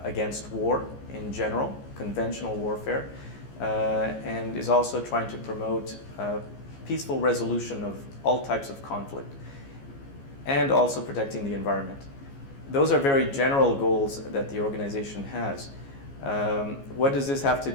against war in general, conventional warfare, and is also trying to promote peaceful resolution of all types of conflict, and also protecting the environment. Those are very general goals that the organization has. What does this have to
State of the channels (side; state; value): right; late; 15 ms